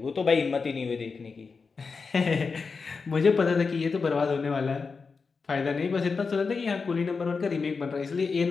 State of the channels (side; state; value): right; quieter; 4.8 dB